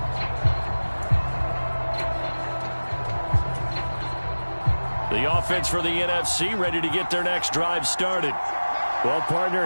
The offense for the NFC ready to get their next drive started. Well,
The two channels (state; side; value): inverted; both; correlation -1.00